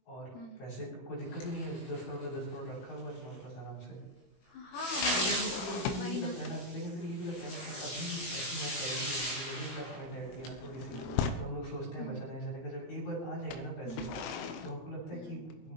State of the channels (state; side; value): late; right; 20 ms